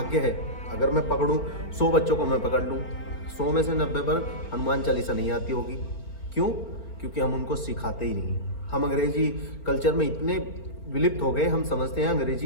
है। अगर मैं पकड़ूं 100 बच्चों को, मैं पकड़ लूं 100 में से 90 पर हनुमान चालीसा नहीं आती होगी। क्यों? क्योंकि हम उनको सिखाते ही नहीं। हम अंग्रेजी कल्चर में इतने विलिप्त हो गए, हम समझते हैं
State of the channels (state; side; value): late; right; 4.4 ms